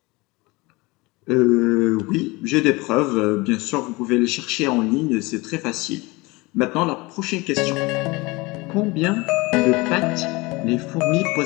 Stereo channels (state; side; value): quieter; right; 23.8 dB